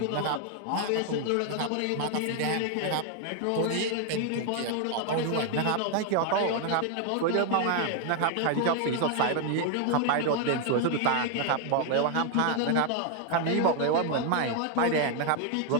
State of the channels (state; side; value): different; both; correlation 0.00